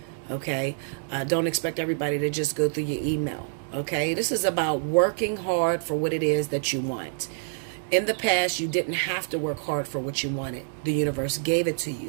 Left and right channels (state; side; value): silent; left; 60 dB below the other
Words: Okay, don't expect everybody to just go through your email. Okay, this is about working hard for what it is that you want. In the past, you didn't have to work hard for what you wanted. The universe gave it to